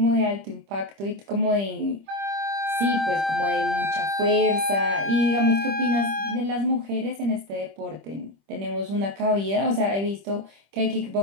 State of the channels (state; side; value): late; left; 25 ms